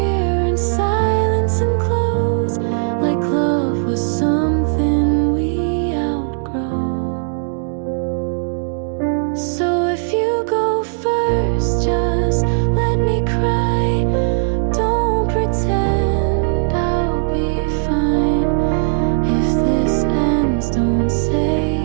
in silence and close, like love was something we outgrow. So if you go first, just let me cry. Don't pretend I'll be fine. If this ends, don't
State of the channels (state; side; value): silent; left; digital silence